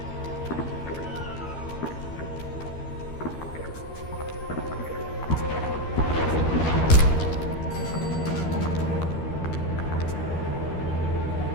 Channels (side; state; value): right; late; 13 ms